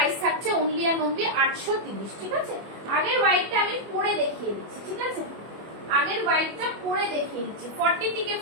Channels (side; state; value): left; late; 25 ms